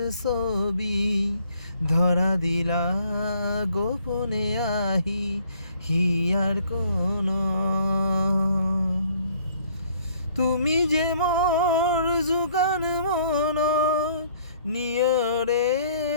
ছবি, ধরা দিলা গোপনে আহি হিয়ার কোন। তুমি যে মোর জুকান মন নিয়রে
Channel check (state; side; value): inverted; both; correlation -0.61